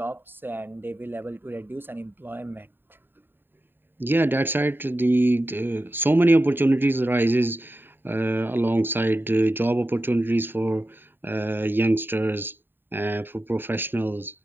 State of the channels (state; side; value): late; left; 0.097 ms